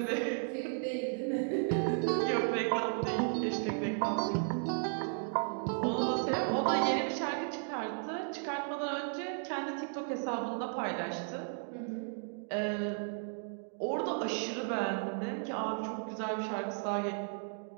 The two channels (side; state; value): left; silent; 55 dB below the other